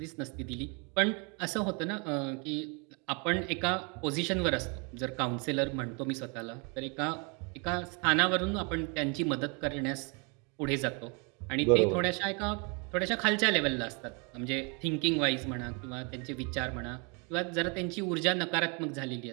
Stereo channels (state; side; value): quieter; left; 33.2 dB